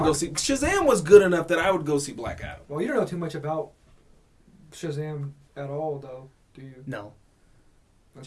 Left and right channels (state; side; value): identical; both; correlation 1.00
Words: go see Shazam was good enough that I would go see Black Adam. Well, you don't know too much about Shazam at all, though, do you? No.